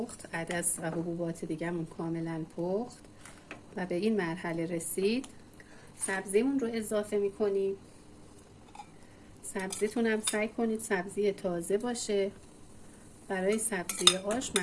عدس و حبوبات دیگه‌مون کاملا پخت و به این مرحله رسید، سبزیمون رو اضافه میکنیم. سبزیتون هم سعی کنید سبزی تازه باشه. برای سبزی آش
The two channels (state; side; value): identical; both; correlation 1.00